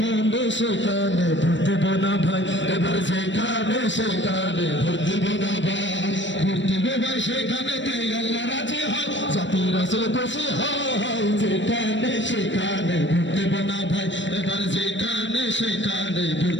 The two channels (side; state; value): right; late; 0.54 ms